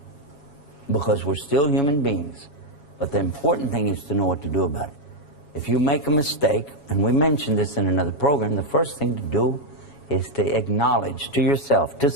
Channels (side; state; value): right; late; 7.1 ms